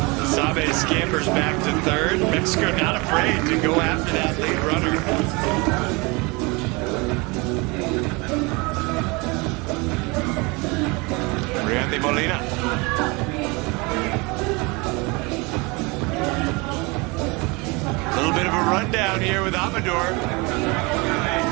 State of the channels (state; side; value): quieter; left; 26.8 dB